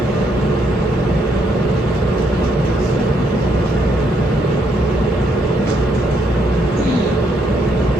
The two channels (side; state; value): both; normal; correlation 0.74